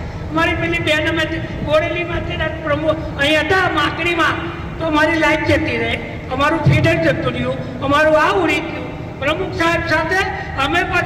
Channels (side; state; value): both; identical; correlation 1.00